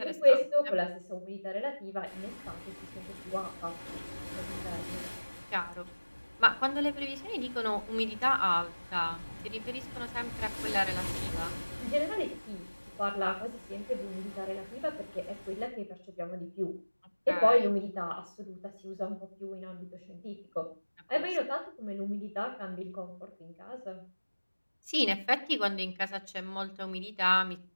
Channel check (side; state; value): both; inverted; correlation -1.00